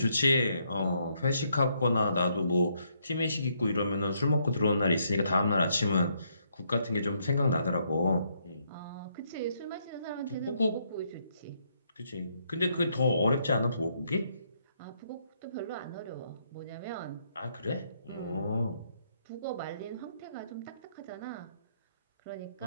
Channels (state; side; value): inverted; both; correlation -0.73